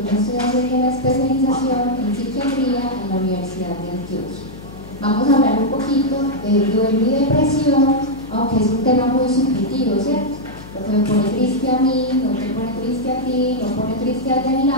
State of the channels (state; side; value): noise; left; hum, 16 dB below the sound